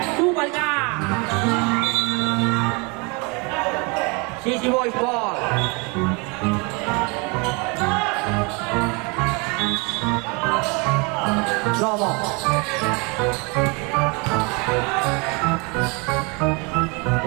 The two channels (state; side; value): quieter; left; 30.5 dB